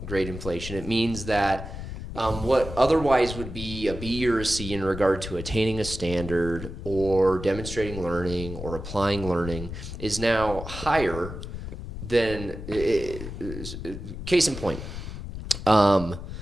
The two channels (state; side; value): noise; left; rumble, 9 dB below the sound